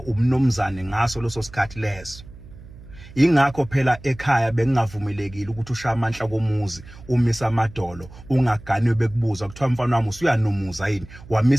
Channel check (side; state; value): right; noise; hum, 19 dB below the sound